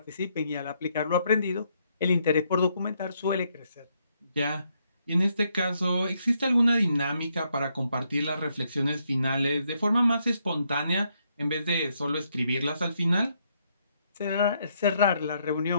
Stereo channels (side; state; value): both; inverted; correlation -0.75